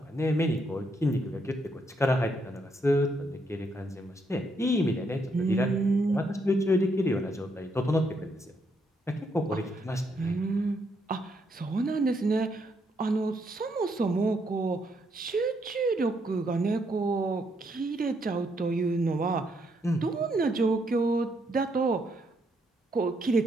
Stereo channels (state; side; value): normal; both; correlation 0.75